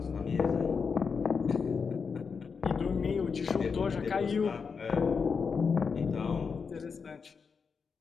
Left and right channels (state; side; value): quieter; right; 5.6 dB